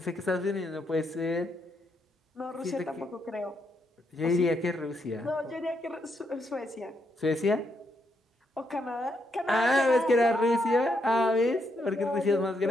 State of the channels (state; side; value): normal; both; correlation 0.78